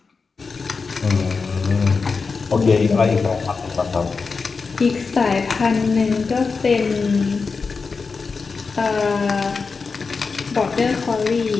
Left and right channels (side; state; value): right; quieter; 4.7 dB